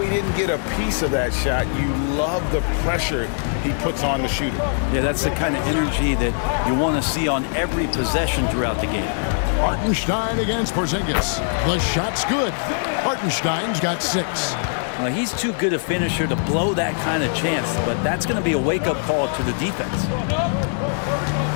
didn't get a piece of that shot, you love the pressure he puts on the shooter. Yeah, that's the kind of energy that you want to see on every possession throughout the game. Hartenstein against Porzingis. The shot's good. Hartenstein's got 6. He's too good a finisher to blow that kind of chance, but that's going to be a wake-up call to the defense.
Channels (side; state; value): right; silent; digital silence